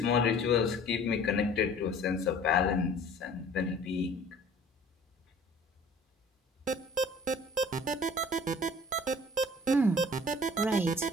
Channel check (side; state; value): both; normal; correlation 0.49